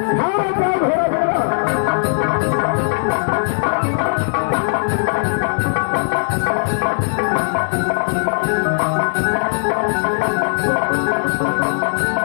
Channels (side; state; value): right; silent; digital silence